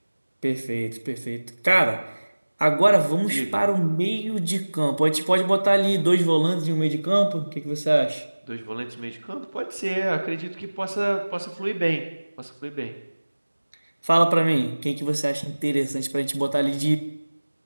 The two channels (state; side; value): inverted; both; correlation -1.00